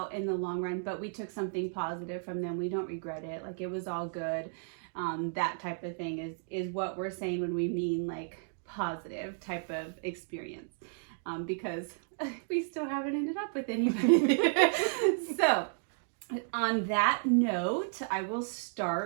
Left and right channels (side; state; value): left; silent; digital silence